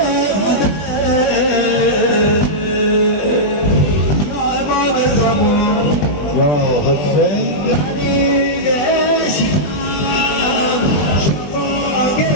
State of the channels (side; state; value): right; late; 20 ms